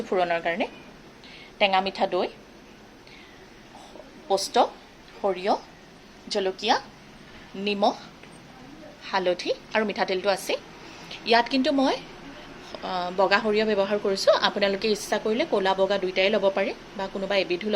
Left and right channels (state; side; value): identical; both; correlation 1.00